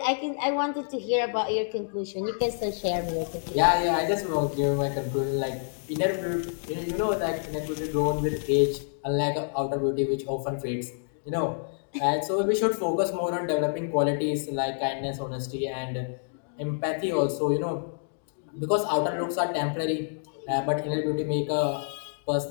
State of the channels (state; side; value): silent; right; digital silence